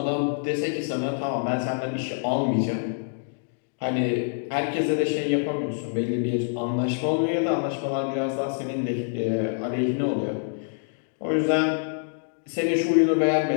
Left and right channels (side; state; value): right; silent; digital silence